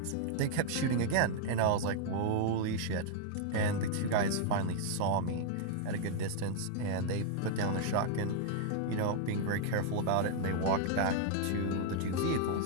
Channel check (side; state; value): both; different; correlation -0.01